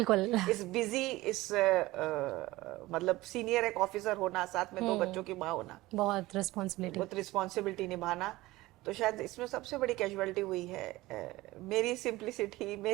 इस बिजी, इस मतलब सीनियर एक ऑफिसर होना, साथ में 2 बच्चों की माँ होना, बहुत रिस्पॉन्सिबिलिटी निभाना, तो शायद इसमें सबसे बड़ी कैजुअलिटी हुई है मेरी सिंप्लिसिटी,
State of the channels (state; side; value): quieter; left; 18.8 dB